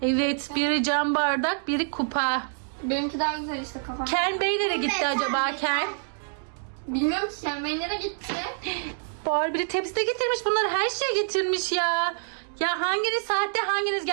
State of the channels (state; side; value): silent; left; digital silence